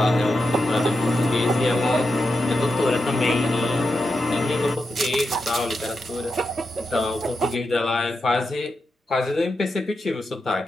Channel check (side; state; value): both; normal; correlation 0.87